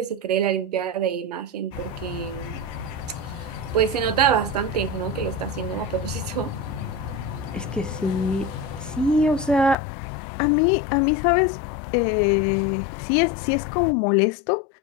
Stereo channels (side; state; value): right; drops out; at 9.8 s